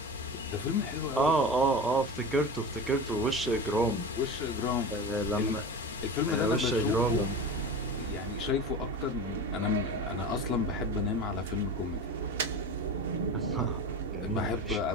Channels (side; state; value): both; normal; correlation 0.29